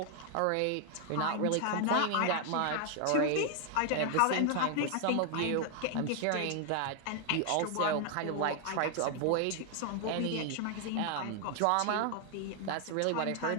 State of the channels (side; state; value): both; different; correlation 0.00